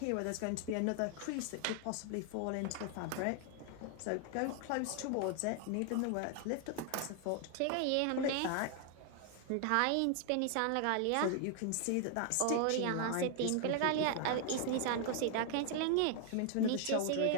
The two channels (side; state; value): both; different; correlation 0.00